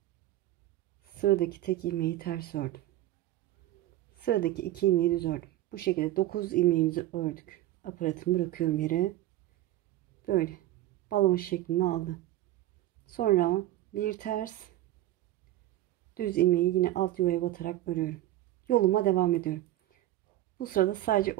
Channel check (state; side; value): quieter; left; 14.8 dB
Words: Sıradaki tek ilmeği ters ördüm. Sıradaki 2 ilmeği düz ördüm. Bu şekilde 9 ilmeğimizi ördük. Aparatımı bırakıyorum yere. Böyle balon şeklini aldı. Sonra bir ters, düz ilmeği yine alt yuvaya batarak örüyorum. Yoluma devam ediyorum. Bu sırada sadece